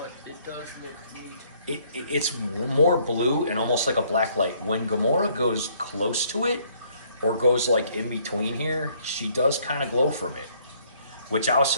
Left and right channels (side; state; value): both; inverted; correlation -0.64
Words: it does look neat. It's more blue and almost like a black light. When Gamora goes close to it, or goes like in between here, she does kind of glow from it. which I was